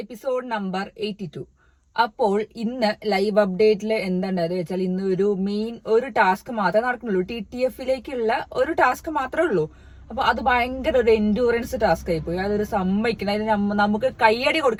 episode number 82. അപ്പോൾ ഇന്ന് live അപ്ഡേറ്റിൽ എന്താണെന്ന് വെച്ചാൽ ഇന്ന് ഒരു ടാസ്ക് മാത്രമേ നടക്കുന്നുള്ളൂ. TTFിലേക്കുള്ള ഒരു ടാസ്ക് മാത്രമേ ഉള്ളൂ. അപ്പൊ അത് ഭയങ്കര ഒരു എൻഡ്യൂറൻസ് ടാസ്ക് ആയിപ്പോയി. അതൊരു സമ്മതിക്കണം. അതിന് നമുക്ക് കയ്യടി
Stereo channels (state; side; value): identical; both; correlation 1.00